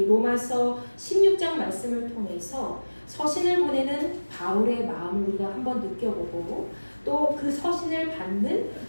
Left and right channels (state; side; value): inverted; both; correlation -1.00